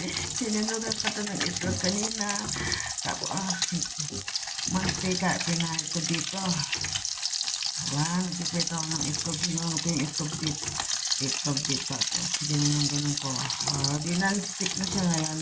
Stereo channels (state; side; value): identical; both; correlation 1.00